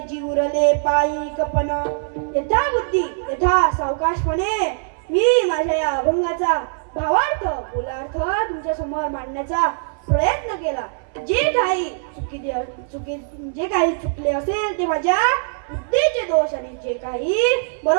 उरले पायी कपन. यथा बुद्धी यथा सावकाशपणे मी माझ्या या अभंगाचा भावार्थ बोलार्थ तुमच्या समोर मांडण्याचा प्रयत्न केला. जे काही जे काही चुकले असेल ते माझ्या बुद्धीचे दोष, आणि जे काही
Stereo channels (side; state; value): left; silent; 62 dB below the other